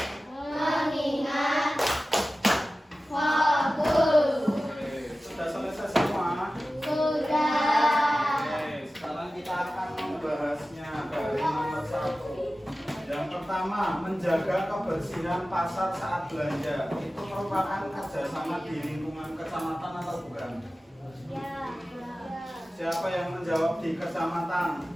mengingat, fokus. Oke, sudah selesai semua? Sudah. Oke, sekarang kita akan membahasnya dari nomor 1. Yang pertama, menjaga kebersihan pasar saat belanja. Itu merupakan kerjasama di lingkungan kecamatan atau bukan? Ya. Siapa yang menjawab di kecamatan?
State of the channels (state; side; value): normal; both; correlation 0.95